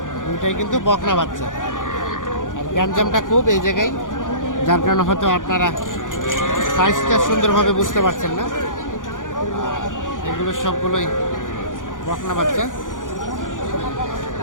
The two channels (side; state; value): right; late; 0.88 ms